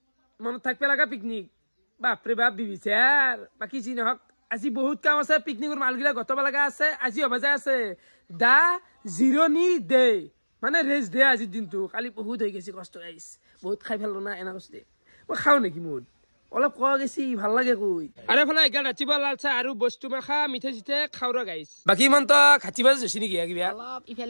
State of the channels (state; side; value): inverted; both; correlation -1.00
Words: Mano thakpe laga picnic. Bapre bap bibisar. Baki ji nohok আজি বহুত কাম আছে পিকনিকৰ মালগিলা গতবা লাগা আছে আজি অবাজা আছে দা জিরোনি day মানে রেস্ট ডে আজি দিনটো খালি বহুত হৈ গেছি কষ্ট গাইস বহুত খাই ফেললো না এনা কষ্ট মই খাও নেকি মুড অলপ কোৱা গেছি ভাল লাগে কই আৰে ফলে এগাল ৰাতিবা লালচা আৰু বস্তু মাখা মিঠে জিতে খাওৰা গাইস বাকি মন তো খাতিবা জছি নেকি কিবা অলপ